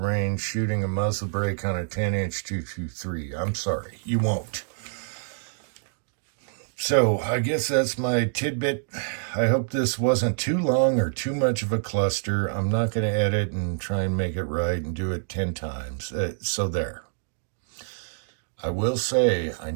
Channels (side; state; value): left; silent; digital silence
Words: shooting a muzzle brake on a 10-inch 223. I'm sorry, you won't. So I guess that's my tidbit. I hope this wasn't too long or too much of a cluster. I'm not going to edit and try and make it right and do it 10 times. So there. I will say, I